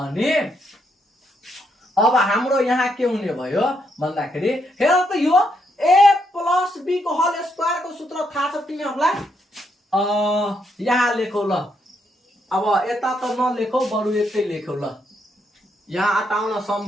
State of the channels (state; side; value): normal; both; correlation 0.77